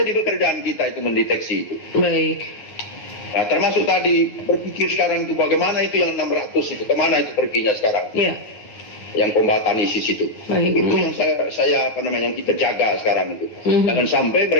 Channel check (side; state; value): right; late; 9.6 ms